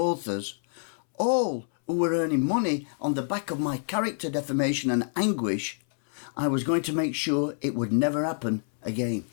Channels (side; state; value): right; silent; 60 dB below the other